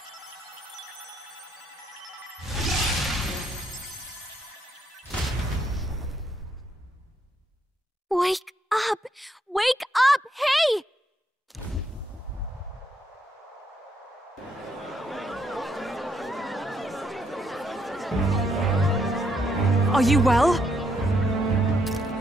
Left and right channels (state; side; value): normal; both; correlation 0.75